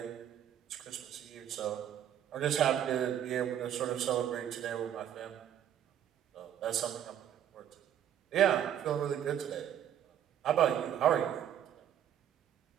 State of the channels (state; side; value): quieter; left; 10.2 dB